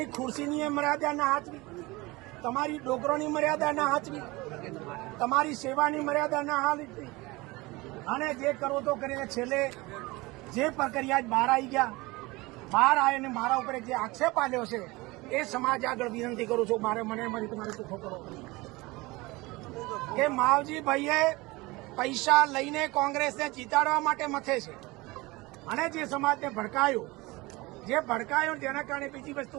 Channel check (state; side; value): quieter; left; 22.5 dB